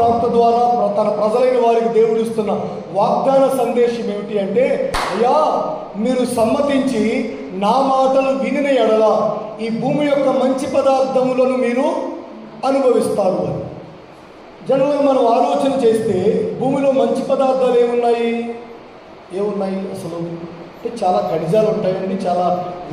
ద్వారా తన ప్రజలైన వారికి దేవుడు ఇస్తున్న వాగ్దాన సందేశం ఏమిటి అంటే, అయ్యా మీరు సమ్మతించి నా మాటలు వినిన ఎడల ఈ భూమి యొక్క మంచి పదార్థములను మీరు అనుభవిస్తారు అని. జనరల్గా మనం ఆలోచన చేస్తే భూమిలో మంచి పదార్థాలు ఏమున్నాయి అసలు అంటే చాలా ఖనిజాలు ఉంటాయండి. చాలా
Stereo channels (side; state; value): both; identical; correlation 1.00